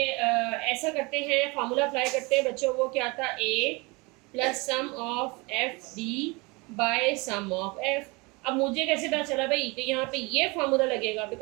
ऐसा करते हैं, फार्मूला अप्लाई करते हैं बच्चों। वो क्या था? A plus sum of F D by sum of F. अब मुझे कैसे पता चला भाई कि यहाँ पे ये फार्मूला लगेगा?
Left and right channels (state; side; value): quieter; left; 26.6 dB